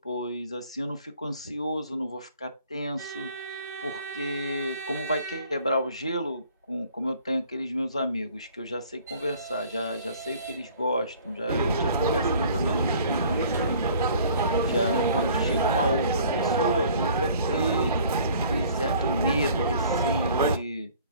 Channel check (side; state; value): both; inverted; correlation -0.53